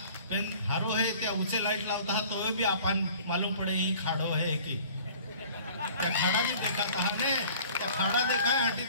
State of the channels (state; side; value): inverted; both; correlation -0.49